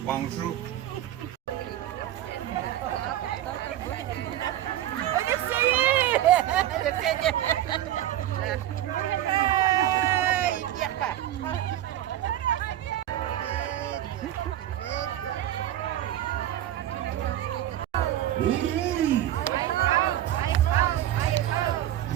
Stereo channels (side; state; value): left; quieter; 12.6 dB